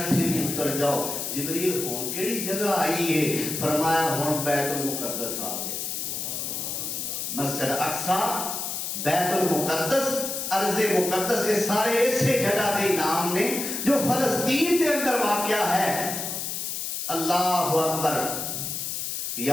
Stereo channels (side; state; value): left; noise; hiss, 4 dB below the sound